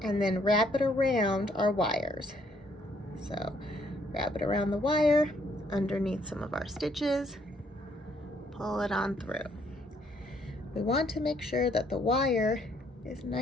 and then wrap it around our wires. So wrap it around the wire, underneath some of our stitches, pull it on through. We want to make sure that the wire is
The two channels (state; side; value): normal; both; correlation 0.68